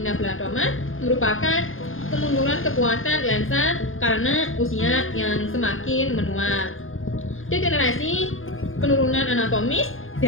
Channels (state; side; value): late; right; 0.59 ms